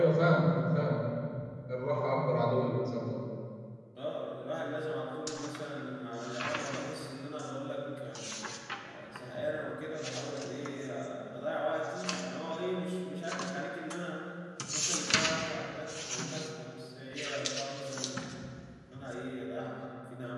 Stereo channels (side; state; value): both; identical; correlation 1.00